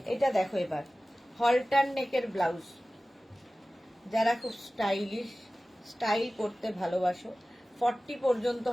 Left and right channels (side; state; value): both; normal; correlation 0.97